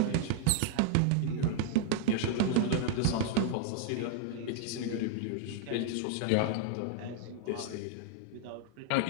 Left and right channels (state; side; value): different; both; correlation 0.00